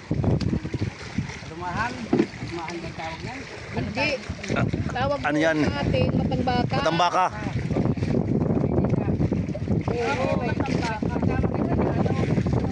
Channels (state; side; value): identical; both; correlation 1.00